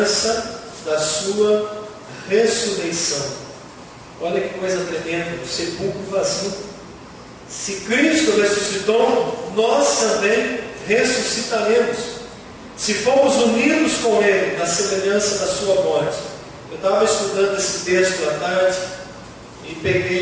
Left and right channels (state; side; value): identical; both; correlation 1.00